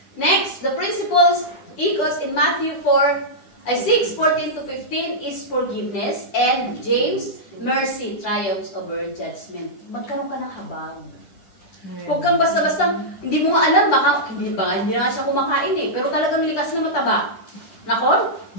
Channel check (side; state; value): right; late; 10 ms